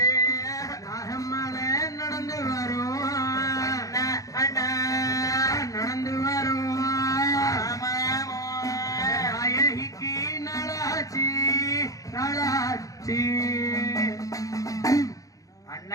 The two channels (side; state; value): right; late; 0.17 ms